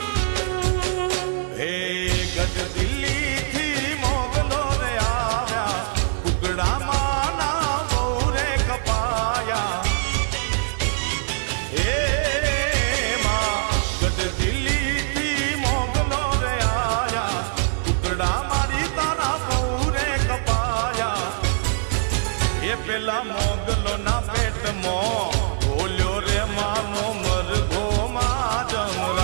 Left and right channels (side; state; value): left; silent; digital silence